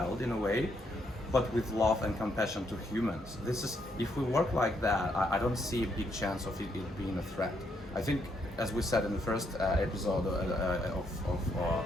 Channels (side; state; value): both; normal; correlation 0.75